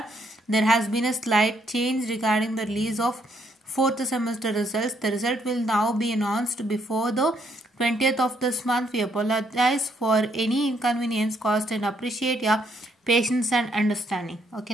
there has been a slight change regarding the release of 4th semester results. The result will now be announced before the 20th of this month. We apologize for any inconvenience caused and appreciate your patience and understanding.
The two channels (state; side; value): normal; both; correlation 0.71